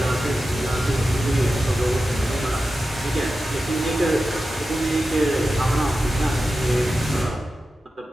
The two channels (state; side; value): normal; both; correlation 0.92